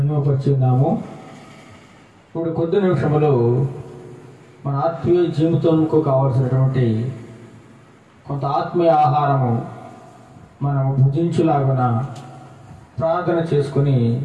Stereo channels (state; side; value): identical; both; correlation 1.00